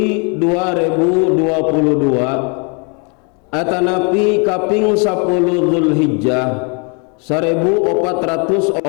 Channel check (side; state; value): right; quieter; 34.7 dB